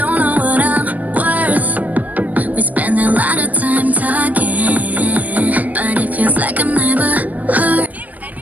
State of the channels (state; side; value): late; left; 0.076 ms